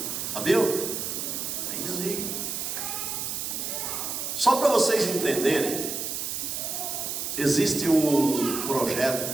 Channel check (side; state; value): right; noise; hiss, 3 dB below the sound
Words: Sabiam? Tem desvio. Só para vocês entenderem, existe um